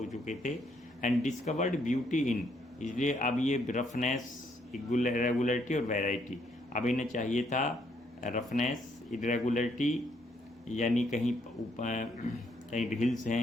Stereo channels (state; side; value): normal; both; correlation 0.71